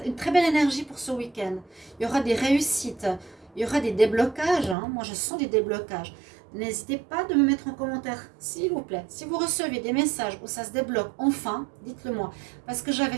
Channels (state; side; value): drops out; left; at 4.8 s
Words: une très belle énergie pour ce week-end. Il y aura des réussites, il y aura des déblocages. Hein. Moi je sens des déblocages. N'hésitez pas de me mettre en commentaire, s'il vous plaît. Si vous recevez des messages où ça se débloque enfin, dites-le moi. Parce que j'avais